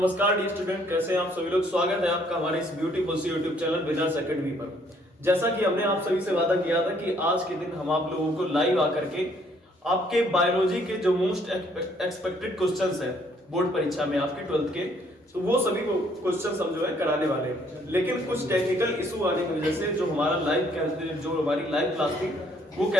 dear student, कैसे हैं आप सभी लोग। स्वागत है आपका हमारे इस ब्यूटीफुल सी यूट्यूब चैनल विनर्स एकेडमी पर। जैसा कि हमने आप सभी से वादा किया था कि आज के दिन हम आप लोगों को लाइव आकर के आपके बायोलॉजी के जो मोस्ट एक्सपेक्टेड क्वेश्चंस हैं बोर्ड परीक्षा में आपके 12th के, तो वो सभी क्वेश्चंस हम जो है कराने वाले हैं। लेकिन कुछ टेक्निकल इशू आने की वजह से जो हमारी लाइव क्लास थी वो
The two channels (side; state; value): both; normal; correlation 0.65